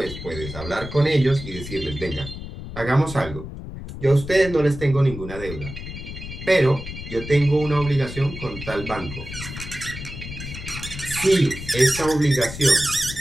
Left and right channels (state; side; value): noise; left; rumble, 10 dB below the sound